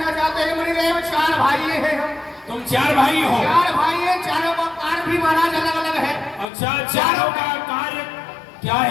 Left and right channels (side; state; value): right; drops out; at 6.5 s